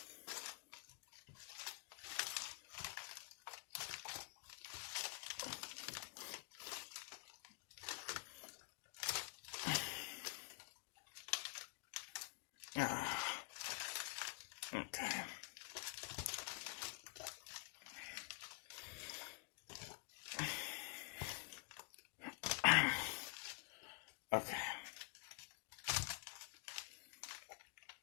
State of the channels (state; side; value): quieter; right; 35.5 dB